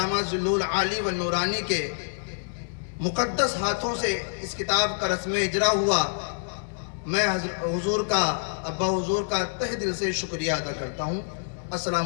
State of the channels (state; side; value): silent; right; digital silence